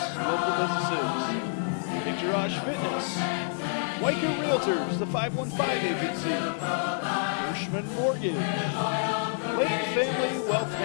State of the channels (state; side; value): silent; right; digital silence